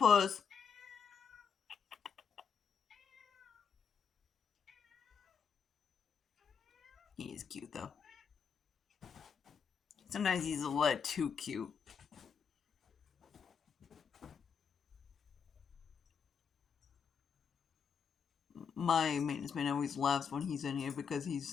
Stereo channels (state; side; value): quieter; right; 6.6 dB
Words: He is cute though. Sometimes he's a little too cute. My maintenance man always laughs when he's in here because